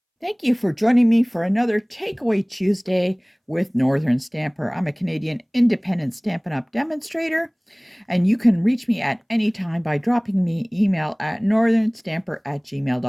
Thank you for joining me for another Takeaway Tuesday with Northern Stamper. I'm a Canadian independent Stampin' Up! Demonstrator, and you can reach me at any time by dropping me email at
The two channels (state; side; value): identical; both; correlation 1.00